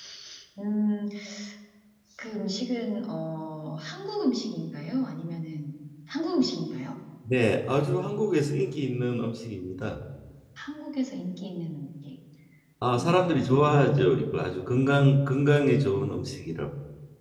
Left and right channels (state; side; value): identical; both; correlation 1.00